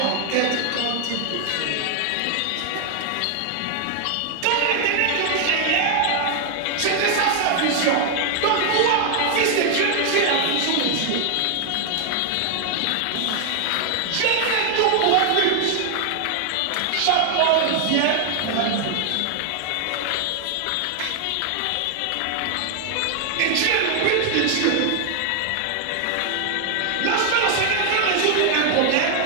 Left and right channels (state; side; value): different; both; correlation 0.00